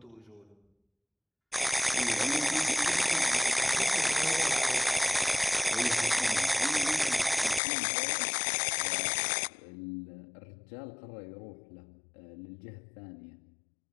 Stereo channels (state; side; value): drops out; right; at 7.6 s